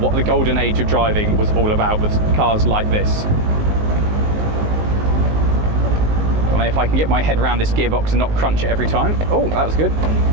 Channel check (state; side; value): late; left; 19 ms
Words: the golden age of driving was all about, was cars like this. And if I can get my head around this gearbox and not crunch it every time. Oh, that was good.